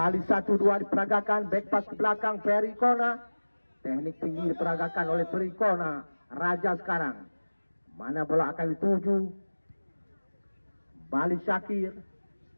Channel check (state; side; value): inverted; both; correlation -1.00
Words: 1-2 diperagakan. Back pass ke belakang Ferry Kona. Teknik tinggi diperagakan oleh Ferry Kona. Raja sekarang. Mana bola akan dituju? Bali Syakir.